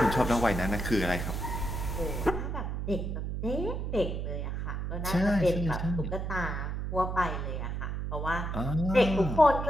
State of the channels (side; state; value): right; noise; hum, 3 dB below the sound